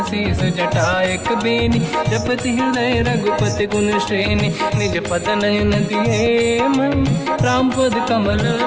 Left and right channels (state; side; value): identical; both; correlation 1.00